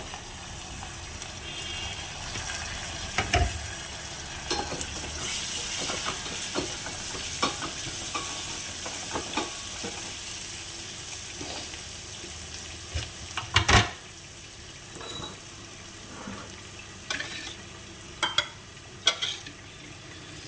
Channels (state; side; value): identical; both; correlation 1.00